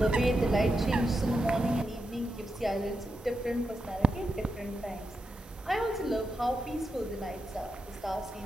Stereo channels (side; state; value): both; normal; correlation 0.87